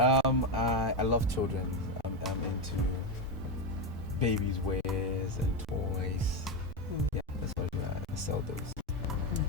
love children. I'm into babies' wares and toys. Yeah, that's what I do. I sell those.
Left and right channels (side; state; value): both; normal; correlation 0.12